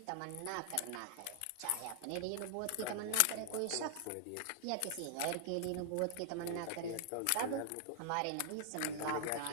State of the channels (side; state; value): both; different; correlation 0.00